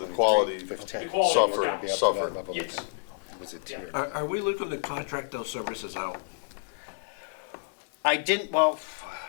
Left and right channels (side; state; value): right; silent; digital silence